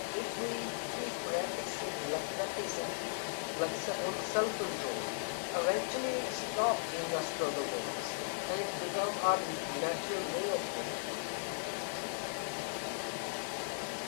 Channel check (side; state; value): right; silent; digital silence